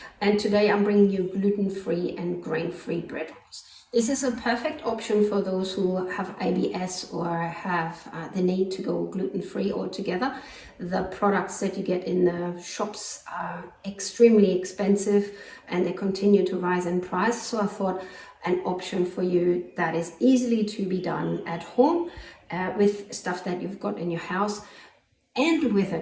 and today I'm bringing you gluten-free and grain-free bread rolls. This is a perfect option for those who have IBS or have the need to go gluten-free altogether. The products that you get in the shops are extremely expensive and they continue to rise in price, so I thought an option for you that is easily to be done at home with stuff that you've got in your house and with a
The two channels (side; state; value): both; identical; correlation 1.00